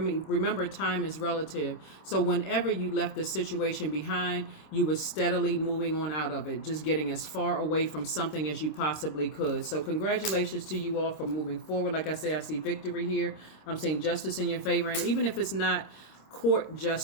time is relative. So whenever you left the situation behind, you were steadily moving on out of it, just getting as far away from something as you possibly could. So congratulations to you all for moving forward. Like I say, I see victory here. I'm seeing justice in your favor. And even if it's not court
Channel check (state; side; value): late; right; 26 ms